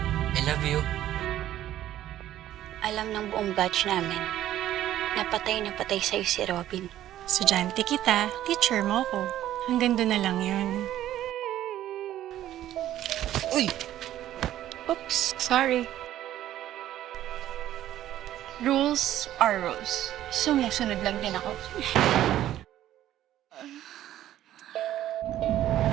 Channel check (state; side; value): quieter; left; 12.7 dB